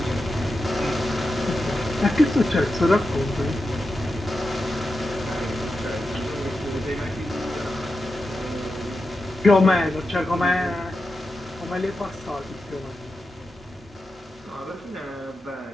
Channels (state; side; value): normal; both; correlation 0.90